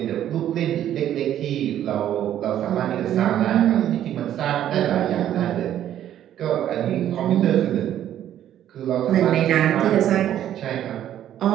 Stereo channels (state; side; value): quieter; left; 11.3 dB